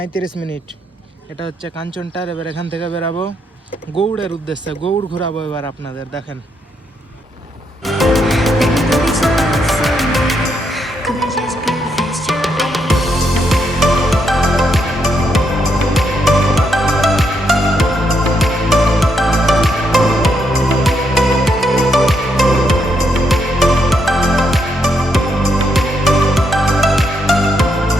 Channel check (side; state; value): both; normal; correlation 0.77